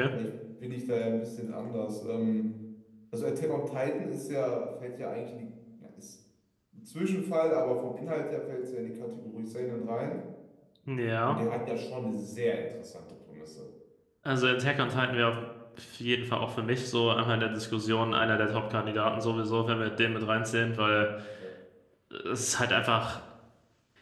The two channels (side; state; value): both; identical; correlation 1.00